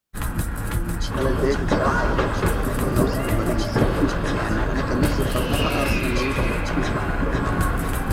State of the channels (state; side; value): identical; both; correlation 1.00